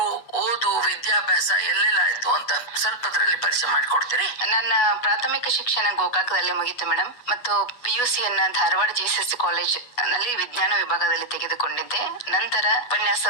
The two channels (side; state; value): right; late; 8.2 ms